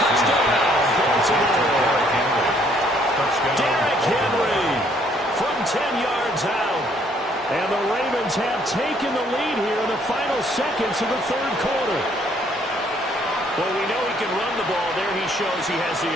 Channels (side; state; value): both; normal; correlation 0.65